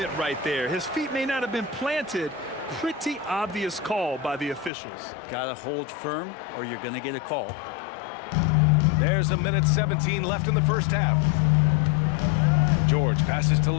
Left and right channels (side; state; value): right; drops out; at 4.7 s